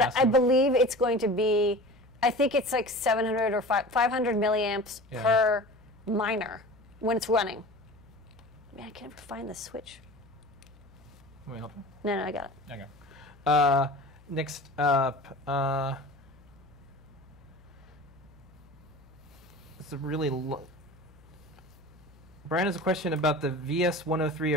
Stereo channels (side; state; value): left; noise; hum, 25 dB below the sound